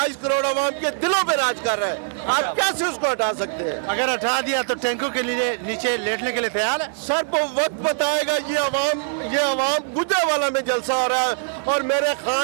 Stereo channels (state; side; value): silent; left; digital silence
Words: करोड़ अवाम के दिलों पे राज कर रहा है, आप कैसे उसको हटा सकते हैं? अगर हटा दिया तो टैंकों के लिए नीचे लेटने के लिए तैयार है? सर वो वक्त बताएगा। ये अवाम गुजरावाला में जलसा हो रहा है और मेरे